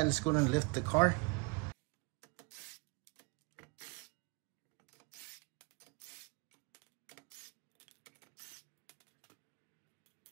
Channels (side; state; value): left; quieter; 28.8 dB